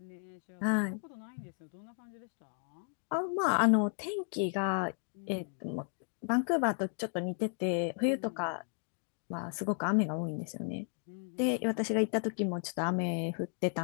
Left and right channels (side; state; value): right; silent; 55 dB below the other